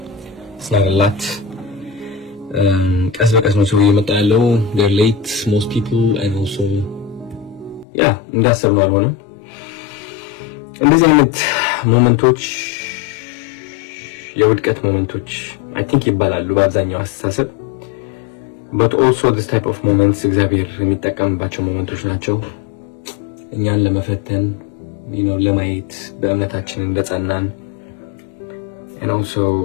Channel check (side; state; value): right; drops out; at 7.9 s